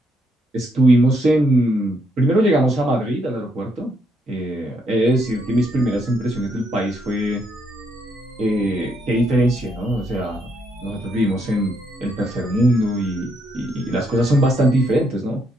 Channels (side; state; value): both; normal; correlation 0.75